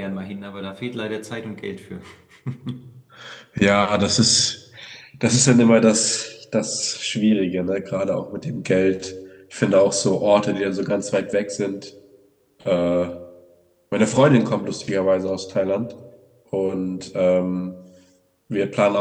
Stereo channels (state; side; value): identical; both; correlation 1.00